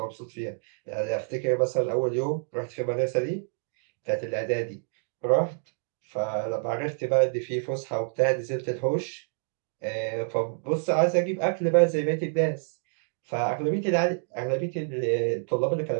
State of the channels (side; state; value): left; silent; digital silence